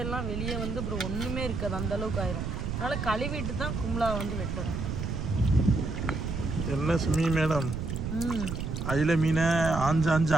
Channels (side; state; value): right; noise; rumble, 4 dB below the sound